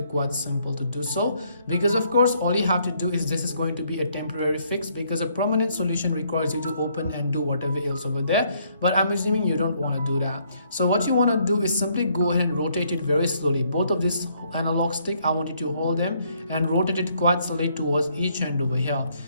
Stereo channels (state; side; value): inverted; both; correlation -0.68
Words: quite simple to do so, because of course all you have to do is this is going to be a temporary fix, because a permanent solution requires you to open and do whatever else over there, but I'm assuming you don't want to do that. So what you want to do is simply go ahead and rotate it very slowly. Both of this analog stick, I want you to hold them and rotate it quite slowly towards each end over here.